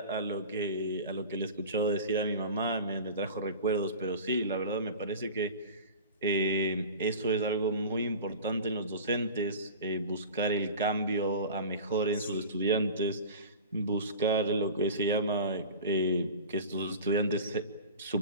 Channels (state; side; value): inverted; both; correlation -0.35